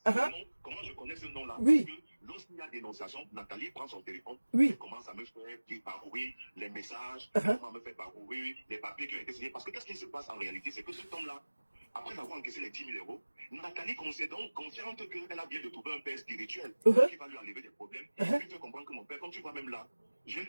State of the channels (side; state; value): both; inverted; correlation -1.00